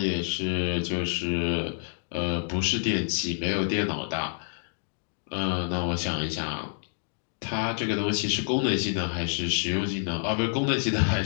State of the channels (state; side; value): silent; right; digital silence